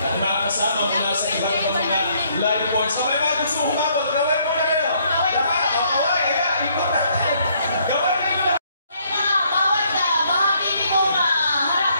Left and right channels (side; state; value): both; inverted; correlation -0.68